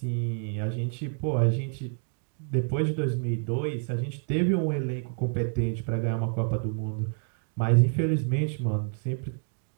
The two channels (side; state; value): left; silent; 59 dB below the other